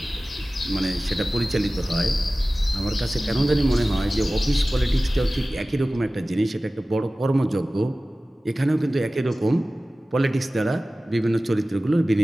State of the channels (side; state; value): both; normal; correlation 0.97